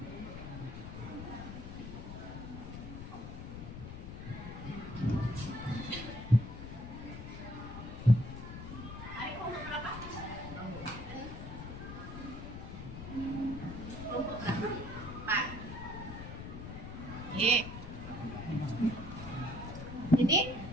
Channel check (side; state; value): left; noise; rumble, 9 dB below the sound